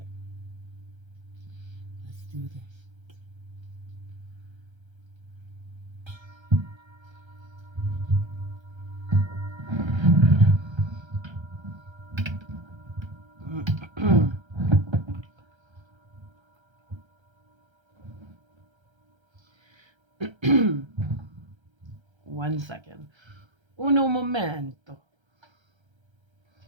let's do this. 1 second. Uno momento.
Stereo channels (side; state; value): left; late; 1.3 ms